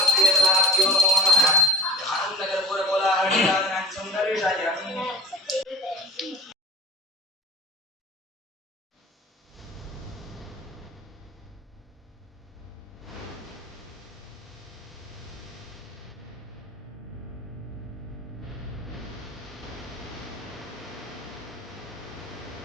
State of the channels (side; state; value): both; normal; correlation 0.42